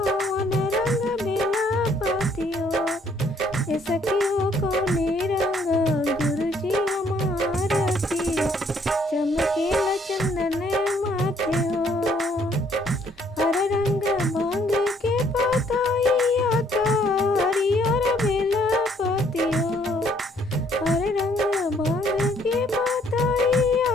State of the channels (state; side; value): normal; both; correlation 0.65